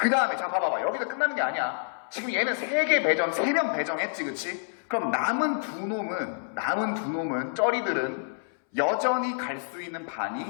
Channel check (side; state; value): right; silent; 59 dB below the other